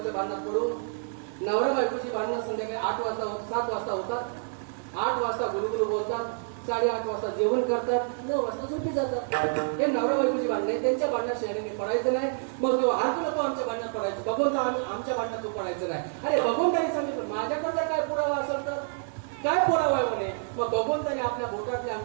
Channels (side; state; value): left; silent; digital silence